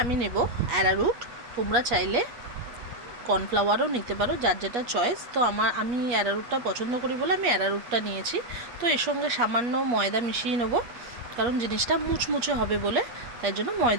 আমি নেব অ্যারারুট। তোমরা চাইলে কর্নফ্লাওয়ারও নিতে পারো, যার যেটা চয়েস। তো আমি অ্যারারুটটা পছন্দ করি বলে আমি অ্যারারুটটা নিয়েছি। তো এর সঙ্গে সামান্য ময়দা মিশিয়ে নেব, কারণ জিনিসটা মুচমুচে হবে বলে, তাই জন্য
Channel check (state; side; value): late; left; 8.4 ms